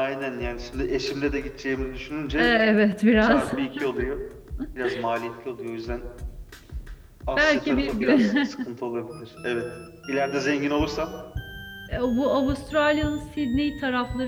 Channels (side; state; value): both; identical; correlation 1.00